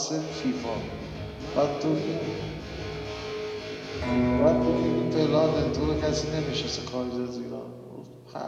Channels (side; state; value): both; identical; correlation 1.00